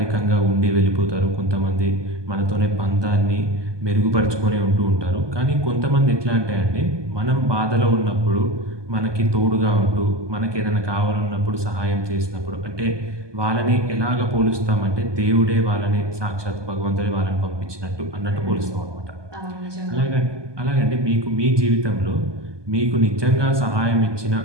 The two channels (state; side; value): late; left; 1.2 ms